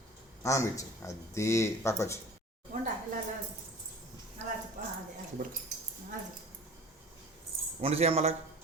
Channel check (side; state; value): both; normal; correlation 0.42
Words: అన్నం ఇచ్చే. అది పక్క వచ్చి వండి చేయమ్మా అలా.